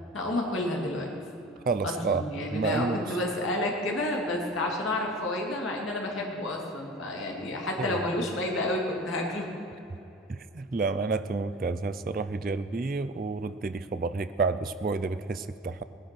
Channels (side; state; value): both; normal; correlation 0.37